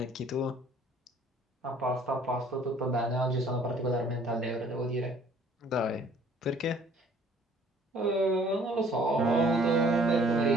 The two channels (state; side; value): normal; both; correlation 0.57